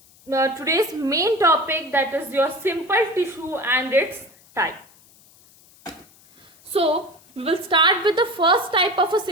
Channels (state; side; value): noise; left; hiss, 28 dB below the sound